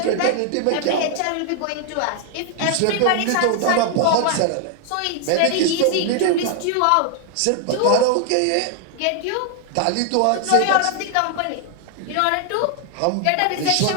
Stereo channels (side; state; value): both; different; correlation 0.00